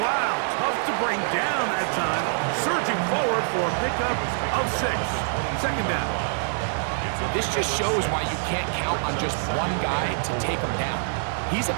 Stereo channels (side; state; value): left; silent; digital silence